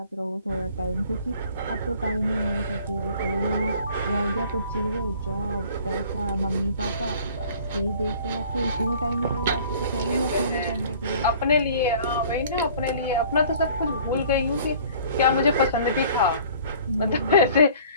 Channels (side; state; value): both; inverted; correlation -0.51